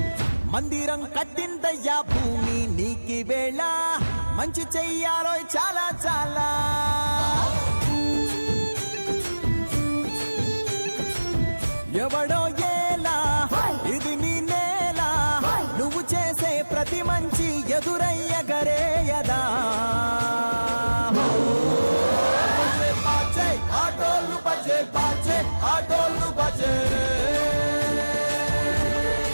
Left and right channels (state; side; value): inverted; both; correlation -1.00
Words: మందిరం కట్టిందయ్యా భూమి నీకి వేళ మంచి చెయ్యాలో చాలా చాలా ఎవడో ఏలా ఇది నీ నేల నువ్వు చేసే ప్రతి మంచి ఎదురయ్యగరేయదా ఆటోలు బజే బాజే ఆటోలు బజే